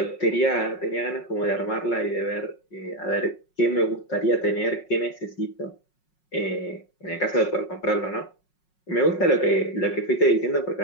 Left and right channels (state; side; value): late; right; 5.5 ms